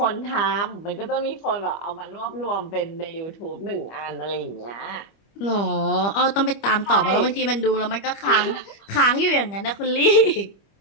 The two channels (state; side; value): late; right; 25 ms